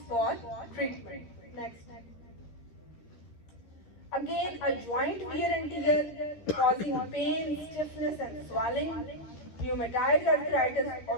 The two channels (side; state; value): right; late; 13 ms